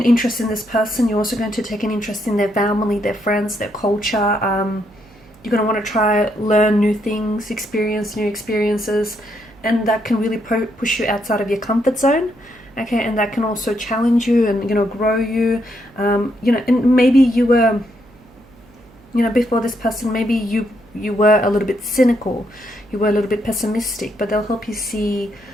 interest in this person. You're also going to take an interest in their family, their friends, their culture. You're going to want to learn new things, experience new experiences, and that can really push you outside of your comfort zone. okay, and that can also challenge you and, you know, grow you. You know, and maybe you were, you know, before this person, maybe you were a little bit cynical, you were a little bit pessimistic, but they'll help you see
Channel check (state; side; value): noise; right; hum, 27 dB below the sound